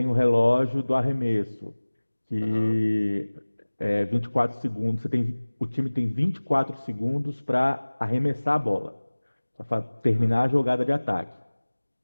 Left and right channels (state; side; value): inverted; both; correlation -1.00